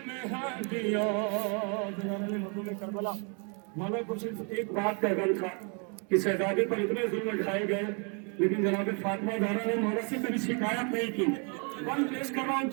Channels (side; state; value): left; quieter; 36.8 dB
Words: में हड्डियां। करबला मौला कुछ एक बात का गल था कि शहजादे पर इतने जुल्म ढाए गए, लेकिन जनाब फातिमा ज़हरा ने मौला से कभी शिकायत नहीं की। वन पेश कर रहा हूँ,